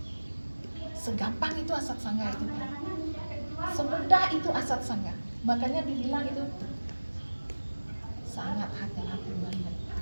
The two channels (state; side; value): inverted; both; correlation -1.00